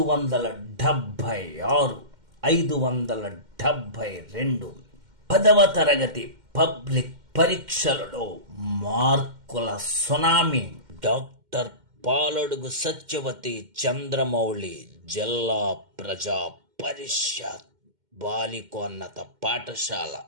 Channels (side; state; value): left; late; 2.1 ms